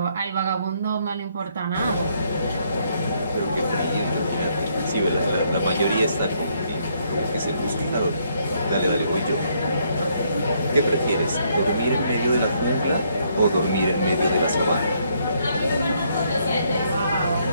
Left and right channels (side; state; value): both; inverted; correlation -0.71